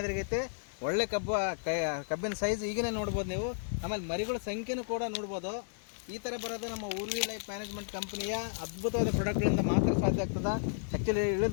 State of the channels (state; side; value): silent; right; 56 dB below the other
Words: ಒಳ್ಳೆ ಕಬ್ಬಿನ ಸೈಜ್ ಈಗನೇ ನೋಡ್ಬೋದು ನೀವು. ಆಮೇಲೆ ಮರಿಗಳ ಸಂಖ್ಯೆನೂ ಕೂಡ ನೋಡ್ಬೋದು. ಈ ಥರ ಬರೋದು ನಮ್ಮ ಊರ್ವಿ ಲೈಫ್ ಮ್ಯಾನೇಜ್ಮೆಂಟ್ ಕಂಪ್ನಿಯ ಅದ್ಭುತವಾದ ಪ್ರಾಡಕ್ಟ್ಗಳಿಂದ ಮಾತ್ರ ಸಾಧ್ಯ ಆಗ್ತದೆ. ಆ್ಯಕ್ಚುಲಿ